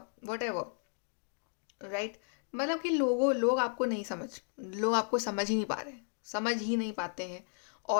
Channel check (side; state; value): right; silent; 55 dB below the other